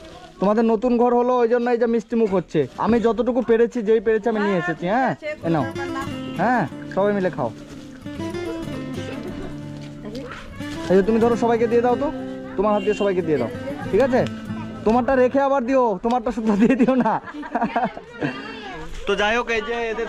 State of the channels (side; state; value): both; identical; correlation 1.00